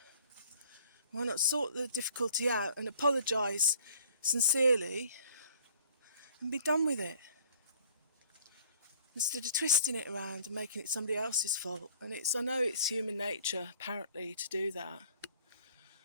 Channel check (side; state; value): both; inverted; correlation -0.55